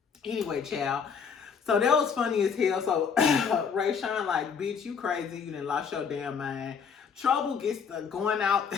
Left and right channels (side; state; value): right; quieter; 6.5 dB